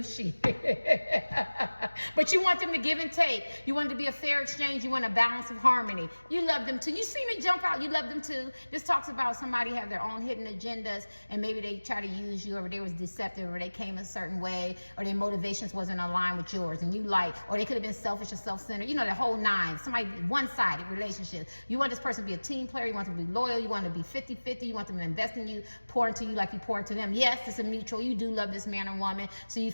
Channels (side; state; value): both; inverted; correlation -1.00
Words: but you want them to give and take. You want it to be a fair exchange. You want a balance of harmony. You love them too. You see me jump out. You love them too. This talks about somebody have their own hidden agendas, and maybe they try to use you, or they was deceptive, or they came a certain way, or their motivations wasn't aligned with yours, and you or they could have been selfish or self-centered. You know, the whole 9. Somebody one-sided relationship. You want this person to be a team player. You want them to be loyal. You want them to be 50-50. You want them to invest in you, pour into you like you pour into them. Yes, it's a mutual. You do love this man or woman, so you